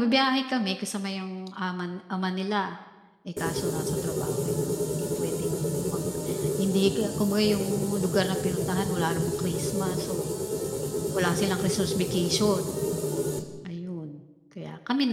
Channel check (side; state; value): both; identical; correlation 1.00